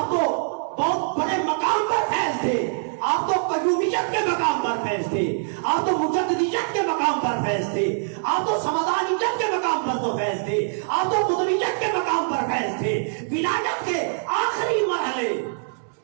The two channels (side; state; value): left; silent; digital silence